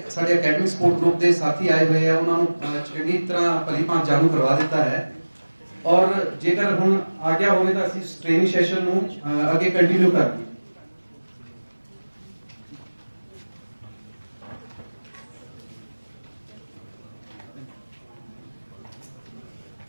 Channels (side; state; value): both; inverted; correlation -1.00